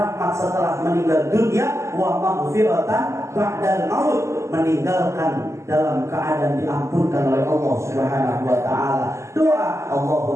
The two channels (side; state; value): left; late; 0.13 ms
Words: setelah meninggal dunia. Wa maghfiratan ba'dal maut, meninggalkan dalam keadaan diampunkan oleh Allah Subhanahu wa taala. Doa